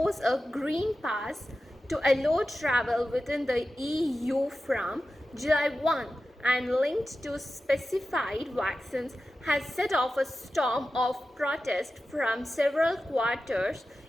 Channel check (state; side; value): normal; both; correlation 0.93